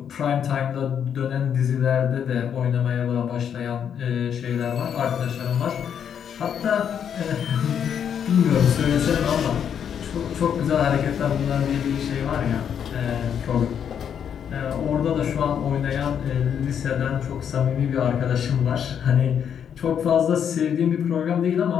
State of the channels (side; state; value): right; quieter; 8.3 dB